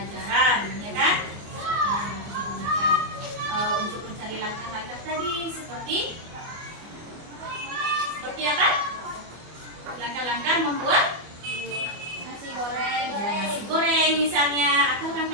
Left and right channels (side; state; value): left; late; 24 ms